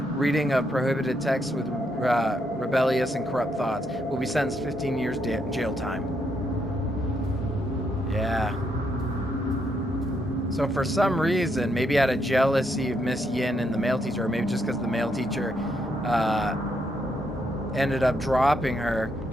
Reading of prohibited texts with rebellious and corrupt thoughts. Will be sentenced 15 years jail time. Yeah. So for some reason, maybe out of jealousy of Miss Yin and the male teacher, or maybe just because the male teacher ended up dropping her,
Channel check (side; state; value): both; normal; correlation 0.77